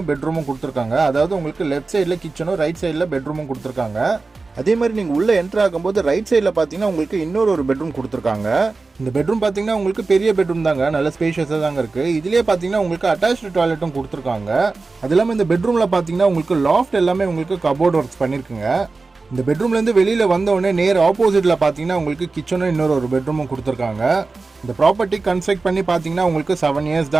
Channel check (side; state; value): left; quieter; 3.9 dB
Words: பெட்ரூமும் கொடுத்துருக்காங்க. அதாவது உங்களுக்கு லெஃப்ட் சைடில் கிச்சனும் ரைட் சைடில் பெட்ரூமும் கொடுத்துருக்காங்க. அதே மாதிரி நீங்கள் உள்ளே என்ட்ரு ஆகும்போது ரைட் சைடில் பார்த்தீங்கன்னா உங்களுக்கு இன்னொரு பெட்ரூம் கொடுத்துருக்காங்க. இந்த பெட்ரூம் பார்த்தீங்கன்னா உங்களுக்கு பெரிய பெட்ரூம் தாங்க, நல்ல ஸ்பேஷியஸாக தாங்க இருக்குது. இதுலேயே பார்த்தீங்கன்னா உங்களுக்கு அட்டாச்டு டாய்லெட்டும் கொடுத்துருக்காங்க. அது இல்லாமல் இந்த பெட்ரூமில் பார்த்தீங்கன்னா உங்களுக்கு லாஃப்ட் எல்லாமே உங்களுக்கு கபோர்ட் ஒர்க்ஸ் பண்ணியிருக்குங்க. இந்த பெட்ரூம்லேருந்து வெளியில் வந்தோடனே நேர் ஆப்போசிட்டில் பார்த்தீங்கன்னா உங்களுக்கு கிச்சனும் இன்னொரு பெட்ரூமும் கொடுத்துருக்காங்க. இந்த ப்ராப்பர்ட்டி கன்ஸ்ட்ரக்ட் பண்ணி பார்த்தீங்கன்னா உங்களுக்கு 7 இயர்ஸ்